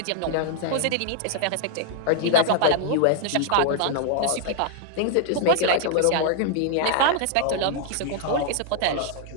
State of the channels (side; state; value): both; different; correlation 0.00